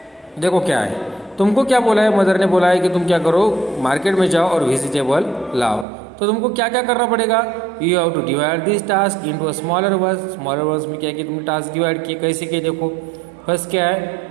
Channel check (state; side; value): drops out; left; at 5.9 s